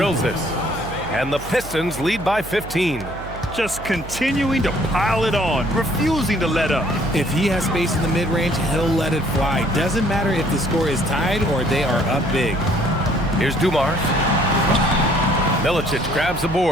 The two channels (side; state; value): right; noise; hum, 12 dB below the sound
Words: it. And the Pistons lead by 15. Just continuing to pile it on, refusing to let up. If he has space in the mid-range, he'll let it fly. Doesn't matter if the score is tied or they are up big. Here's Dumars. Milicic grabs the